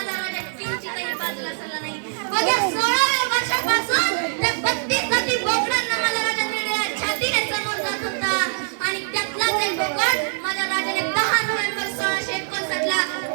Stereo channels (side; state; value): left; silent; digital silence